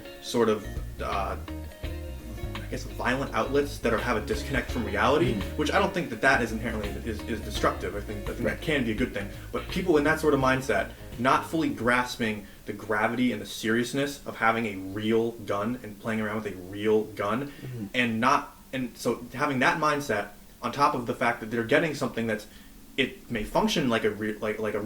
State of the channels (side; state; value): both; identical; correlation 1.00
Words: sort of I guess violent outlets that have a disconnect from reality, which I don't think that is inherently is destructive. I think that can be a good thing. But people in that sort of mindset, not fully grasping the gravity and the seriousness of having a real gun and playing around with a real gun, and so having that mindset on top of the fact that they're getting something it may function like a real